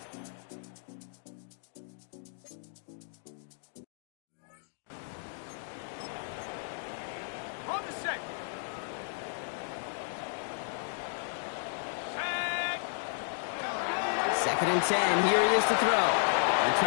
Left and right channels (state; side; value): silent; right; digital silence